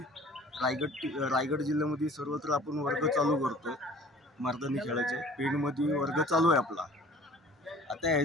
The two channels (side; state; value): both; normal; correlation 0.49